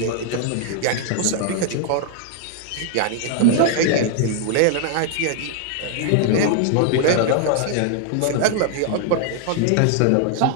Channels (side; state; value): both; different; correlation 0.00